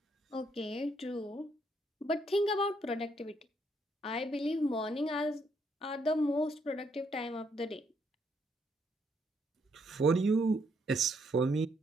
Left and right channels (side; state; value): both; normal; correlation 0.73